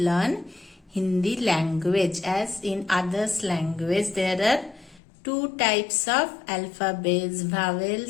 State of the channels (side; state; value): right; drops out; at 5.0 s